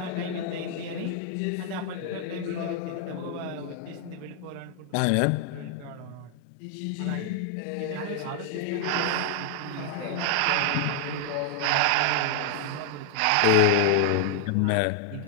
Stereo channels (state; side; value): different; both; correlation 0.00